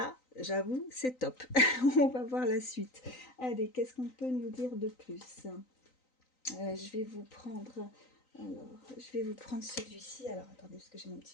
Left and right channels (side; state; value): right; late; 3.9 ms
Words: j'avoue, c'est top. On va voir la suite. Allez, qu'est-ce qu'on peut nous dire de plus? Je vais vous prendre... Alors, je vais vous prendre celui-ci. Alors, attendez, parce que j'ai mon